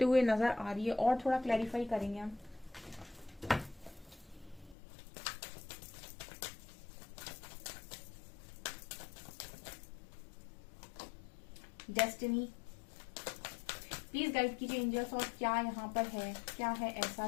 हुए नजर आ रही है। और थोड़ा क्लैरिफाई करेंगे हम। डेस्टिनी, प्लीज गाइड कीजिए एंजल्स, और क्या यहाँ पर है, क्या है ऐसा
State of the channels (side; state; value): right; drops out; at 4.8 s